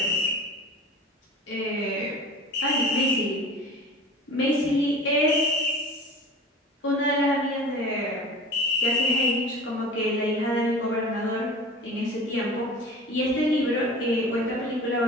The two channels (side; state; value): both; normal; correlation 0.37